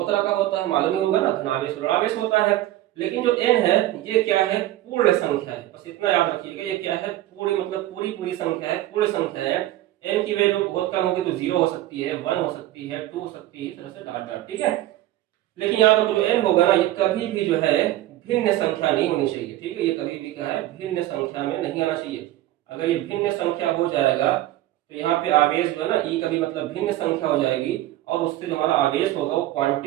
तरह का होता है, मालूम ही होगा ना, धनावेश और ऋणावेश होता है। लेकिन जो n है ये क्या है? पूर्ण संख्या है, बस इतना याद रखिएगा। ये क्या है? पूरी, मतलब पूरी संख्या है, पूर्ण संख्या है। n की वैल्यू बहुत कम होगी तो 0 हो सकती है, 1 हो सकती है, 2 हो सकती है, इस तरह से डॉट डॉट, ठीक है। लेकिन यहाँ पर जो n होगा ना, ये कभी भी जो है भिन्न संख्या नहीं होनी चाहिए, ठीक है। ये कभी भी क्या है? भिन्न संख्या में नहीं आना चाहिए। अगर ये भिन्न संख्या हो जाएगा तो यहाँ पे आवेश जो है ना, ई कभी मतलब भिन्न संख्या हो जाएगी और उससे जो हमारा आवेश होगा वो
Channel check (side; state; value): left; quieter; 15.0 dB